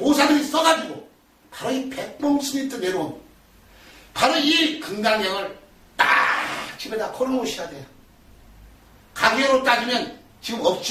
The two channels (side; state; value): both; identical; correlation 1.00